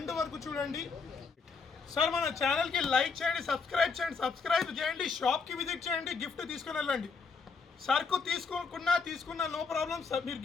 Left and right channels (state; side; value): quieter; right; 5.0 dB